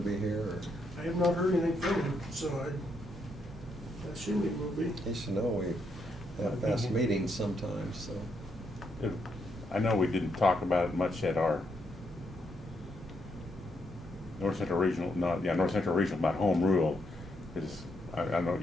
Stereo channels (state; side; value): normal; both; correlation 0.78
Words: here, or? I have not heard anything from him, so I assume it will be. He should know we have fast meetings sometimes, so. I know we didn't talk about it much at our North Central Regional, North Central Regional about home rule. I don't know,